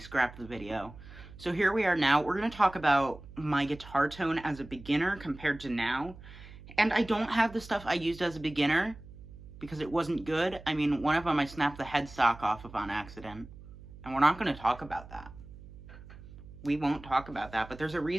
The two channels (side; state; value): right; noise; hum, 17 dB below the sound